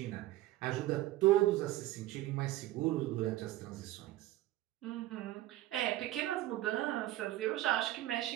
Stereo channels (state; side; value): quieter; left; 15.8 dB